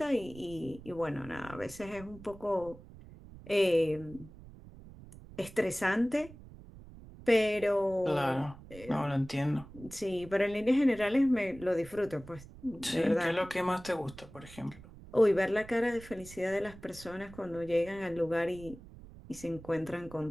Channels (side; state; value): right; noise; rumble, 18 dB below the sound